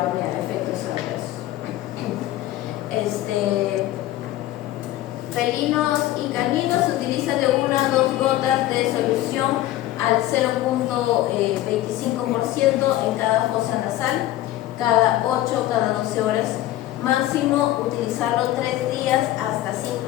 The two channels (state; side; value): quieter; right; 14.8 dB